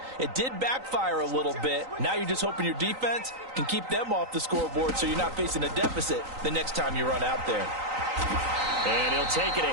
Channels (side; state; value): left; late; 3.9 ms